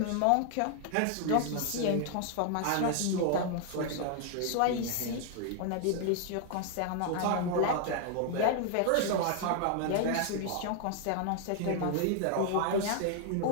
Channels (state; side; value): different; both; correlation 0.00